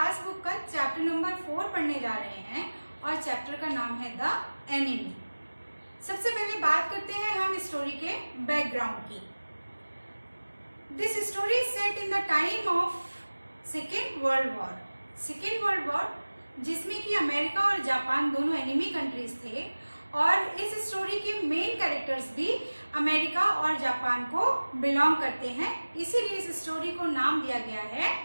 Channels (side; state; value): both; inverted; correlation -1.00